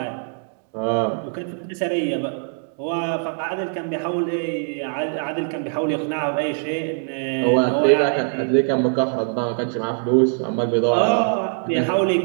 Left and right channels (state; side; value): silent; left; digital silence